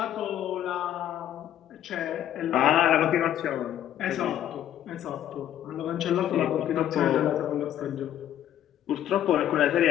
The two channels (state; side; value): quieter; right; 11.3 dB